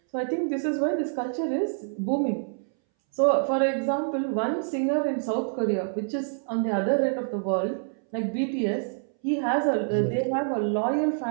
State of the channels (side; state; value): left; silent; 60 dB below the other